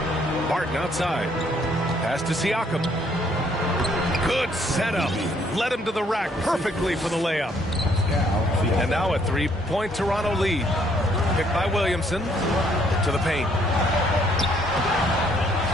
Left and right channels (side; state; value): both; normal; correlation 0.66